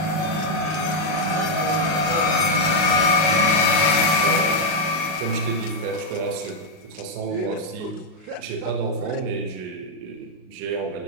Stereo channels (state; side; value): late; left; 38 ms